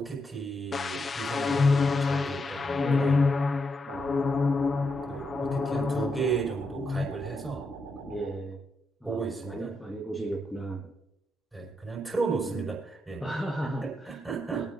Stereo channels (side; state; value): both; normal; correlation 0.82